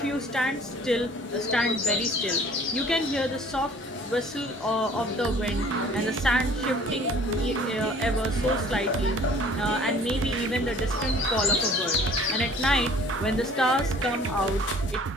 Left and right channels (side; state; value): both; normal; correlation 0.52